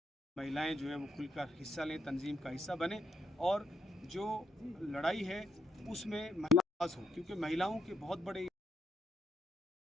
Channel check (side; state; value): both; normal; correlation 0.77